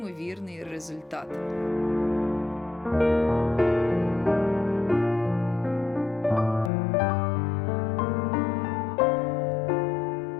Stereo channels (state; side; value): drops out; right; at 6.7 s